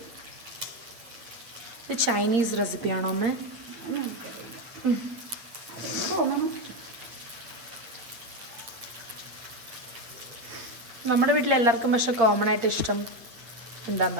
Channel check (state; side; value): late; left; 8.8 ms